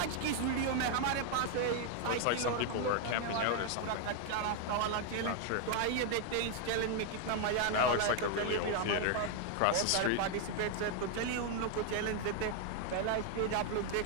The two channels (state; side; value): different; both; correlation 0.00